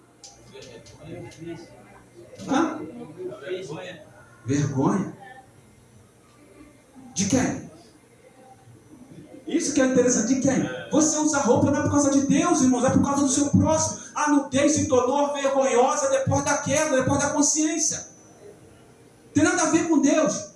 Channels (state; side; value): identical; both; correlation 1.00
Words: Hã? Vergonha. De quem? Isso que é interessante. De quem? Você usa roupa não é por causa de Deus, irmãos, é por causa do seu próximo. A nudez se tornou vergonhosa depois da queda, depois da consciência. Tem nada a ver com Deus.